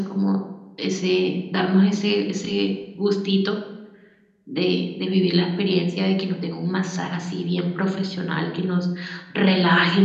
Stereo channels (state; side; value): identical; both; correlation 1.00